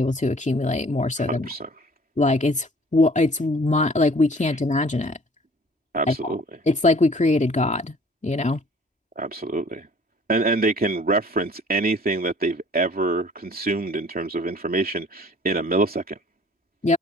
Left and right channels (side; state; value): both; normal; correlation 0.53